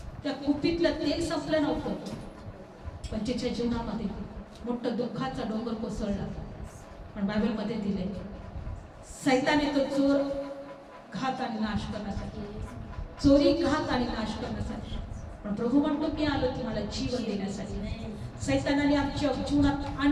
त्या कुपीतलं तेल संपलं नव्हतं, पण तिच्या जीवनामध्ये मोठं दुःखाचा डोंगर कोसळला. पण बायबलमध्ये दिले सैताने तो चोर घात आणि नाश करण्यासाठी, चोरी घात आणि नाश करण्यासाठी, पण प्रभू म्हणतो की आलो तुम्हाला जीवन देण्यासाठी. सैतानाने आमच्या जीवनात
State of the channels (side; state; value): both; identical; correlation 1.00